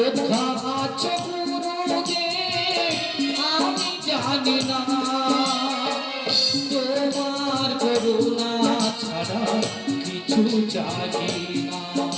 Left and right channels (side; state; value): both; identical; correlation 1.00